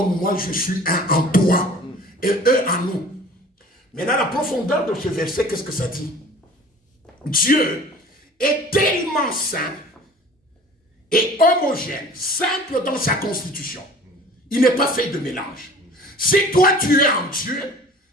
moi, je suis un en toi. Et eux en nous. Maintenant, la profondeur de ce verset, qu'est-ce que ça dit? Dieu est tellement saint et homogène, simple dans sa constitution. Il n'est pas fait de mélange. Si toi tu es en Dieu,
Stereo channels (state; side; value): normal; both; correlation 0.46